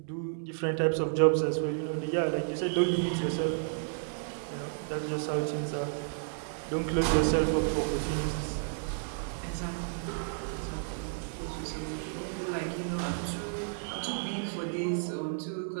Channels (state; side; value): silent; left; 57 dB below the other